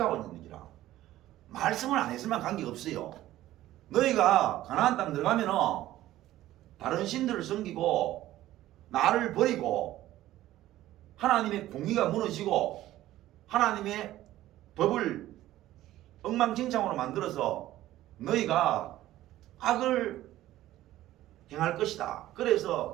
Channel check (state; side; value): quieter; left; 14.7 dB